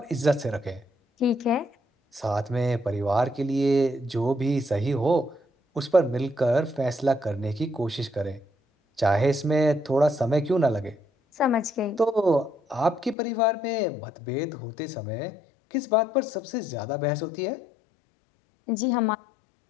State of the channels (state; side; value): drops out; right; at 13.2 s